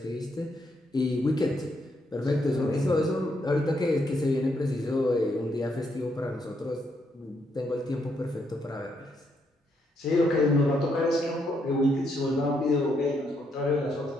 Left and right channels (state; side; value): normal; both; correlation 0.77